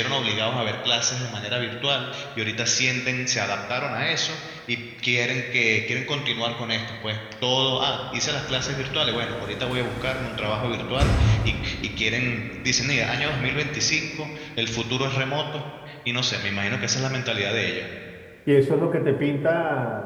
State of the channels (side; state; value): both; identical; correlation 1.00